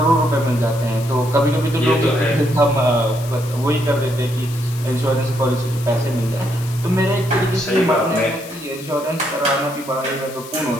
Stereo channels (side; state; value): left; noise; hiss, 16 dB below the sound